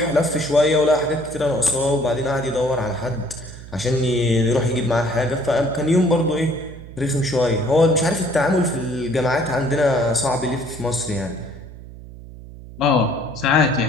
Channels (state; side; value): noise; right; hum, 16 dB below the sound